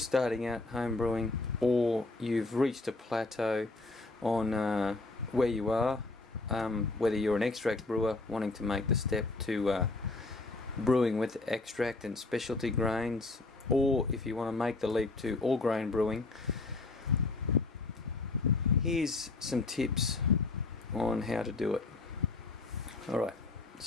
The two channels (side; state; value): right; quieter; 3.4 dB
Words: starting out home brewing, or you've reached a plateau on where you are, whether you're an extract brewer wanting to make the step to brewing with extract and specialty grains, or if you want to make the leap to all grain brewing, here's some tips on how to do it. Alright,